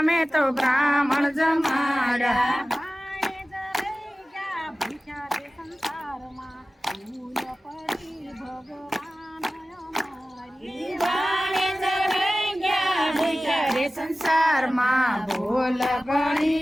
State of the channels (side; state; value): both; normal; correlation 0.96